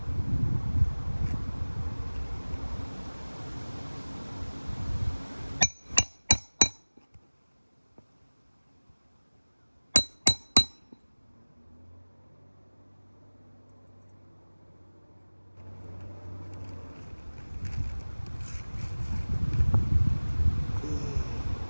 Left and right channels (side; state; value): both; inverted; correlation -1.00